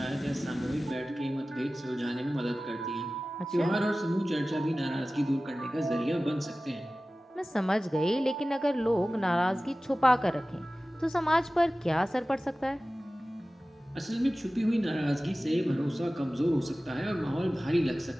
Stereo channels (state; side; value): normal; both; correlation 0.96